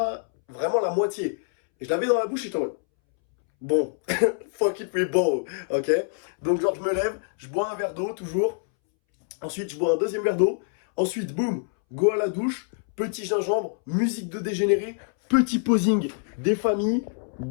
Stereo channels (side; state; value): right; silent; 62 dB below the other